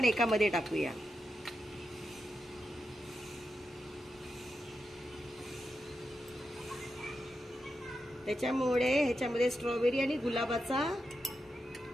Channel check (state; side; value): normal; both; correlation 0.87